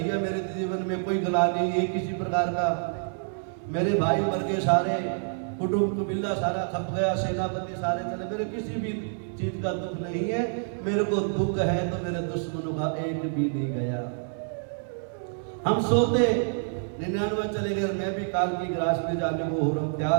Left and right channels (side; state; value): left; silent; 60 dB below the other